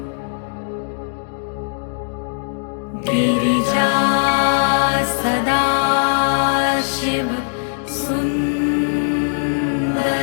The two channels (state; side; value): silent; right; digital silence